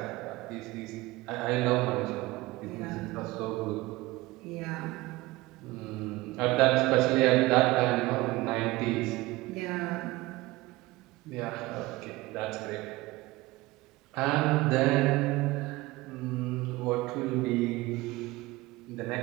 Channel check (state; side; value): quieter; left; 20.2 dB